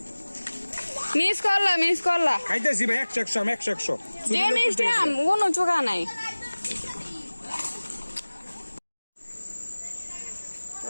মিস করলা খাইতেছি ভাই 100 যে মিষ্টি আম কোনো চোখা নাই তো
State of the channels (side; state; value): both; inverted; correlation -1.00